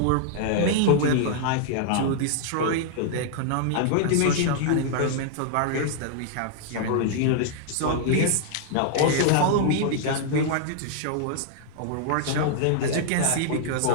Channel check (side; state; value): both; different; correlation -0.01